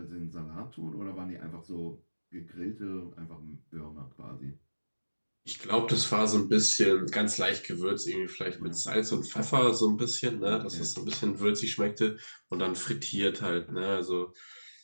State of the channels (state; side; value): inverted; both; correlation -1.00